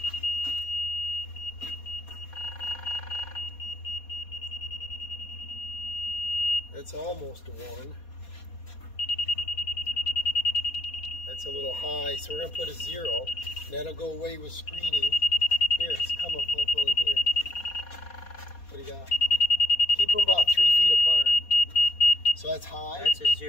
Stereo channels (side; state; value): right; late; 4.2 ms